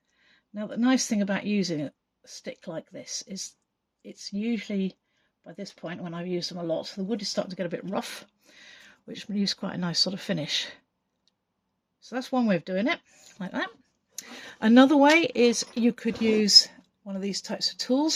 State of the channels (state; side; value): identical; both; correlation 1.00